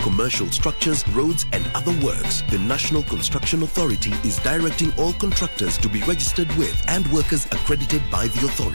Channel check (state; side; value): inverted; both; correlation -1.00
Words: commercial structures, roads and other works. The National Construction Authority is directing all contractors to be registered with and workers accredited by the